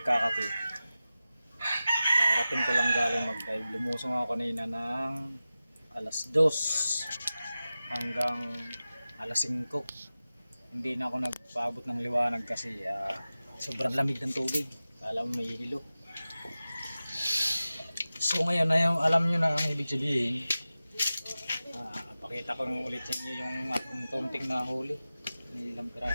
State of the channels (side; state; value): both; inverted; correlation -0.95